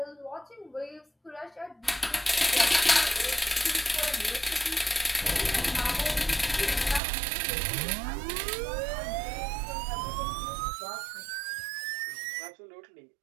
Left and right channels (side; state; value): left; drops out; at 7.0 s